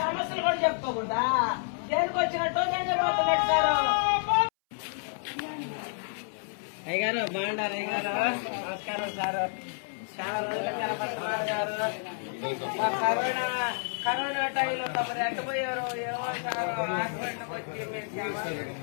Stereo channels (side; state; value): right; silent; 58 dB below the other